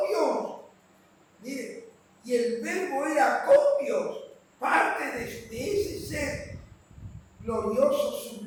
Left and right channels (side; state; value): both; identical; correlation 1.00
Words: Dios. Mire, y el verbo era con Dios, parte de ese ser glorioso,